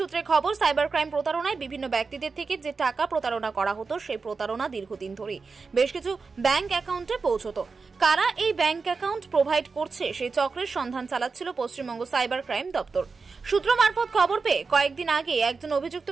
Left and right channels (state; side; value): quieter; left; 4.6 dB